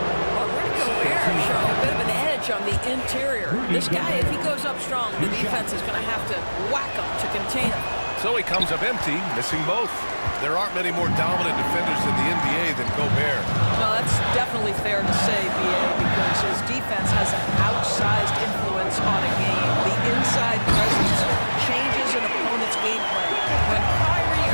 Rudy Gobert showing a bit of an edge on the interior. This guy, if he goes up strong, the defense is going to have to whack him to contain him. So he comes up empty, missing both. There aren't many more dominant defenders in the NBA than Gobert. Well, that's definitely fair to say, B.A., because his defense has an outsized influence on a game. The inside presence changes an opponent's game plan. When Kyrie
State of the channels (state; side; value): inverted; both; correlation -1.00